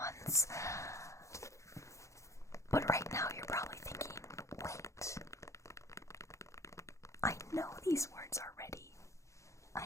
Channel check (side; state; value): right; late; 0.15 ms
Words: But right now you're probably thinking, wait, I know these words already.